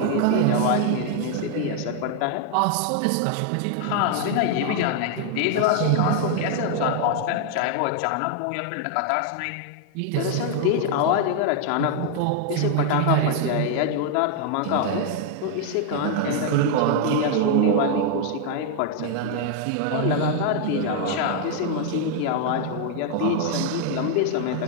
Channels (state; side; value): different; both; correlation 0.00